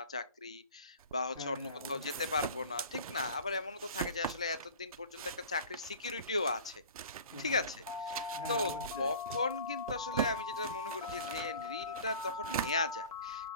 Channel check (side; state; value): both; inverted; correlation -0.40